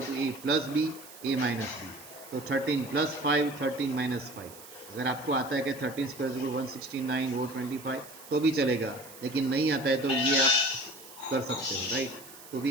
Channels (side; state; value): right; noise; hiss, 18 dB below the sound